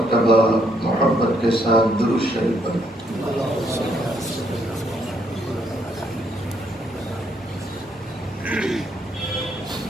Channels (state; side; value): normal; both; correlation 0.72